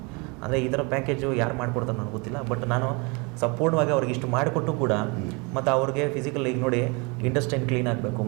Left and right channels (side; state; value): left; quieter; 29.7 dB